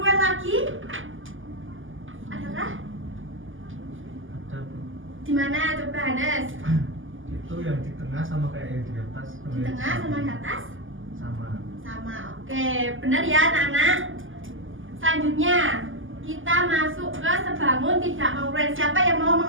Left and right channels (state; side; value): late; left; 0.58 ms